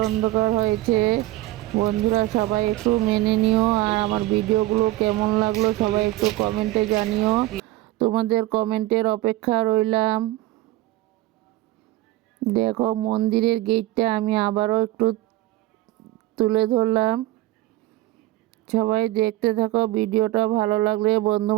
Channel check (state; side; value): quieter; left; 16.6 dB